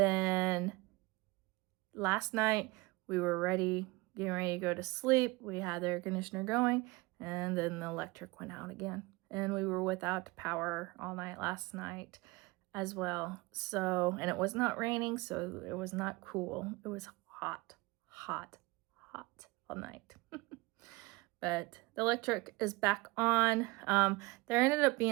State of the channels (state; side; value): quieter; left; 23.3 dB